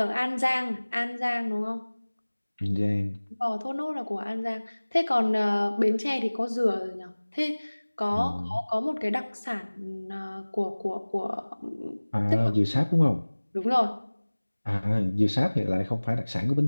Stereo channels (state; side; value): inverted; both; correlation -1.00